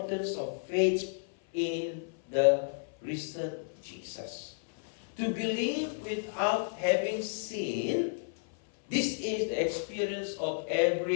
of faith in the risen Jesus. To believe without having seen, this is the experience of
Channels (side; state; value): right; silent; 56 dB below the other